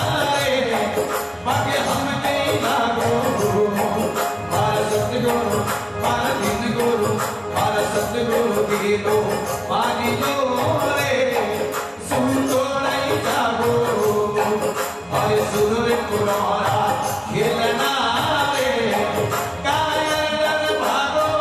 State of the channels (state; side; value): identical; both; correlation 1.00